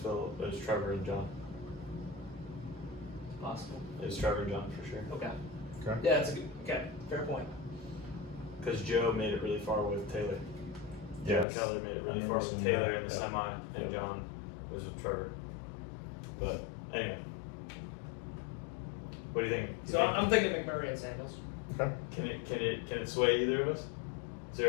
It was Trevor and John. It's possible. It was Trevor and John for sure. Okay. Okay. Yeah, that's a good. Okay, fair point. Because Joe made it really far with Taylor. Yes. Joe Keller made it really I far remember with seeing Taylor that. in the Yep. semi, and Yep. John was with Trevor. But anyway, what do you think? So I'm thinking McMurray and Samuels. Okay. Can it sway either of us? Is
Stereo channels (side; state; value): right; drops out; at 11.5 s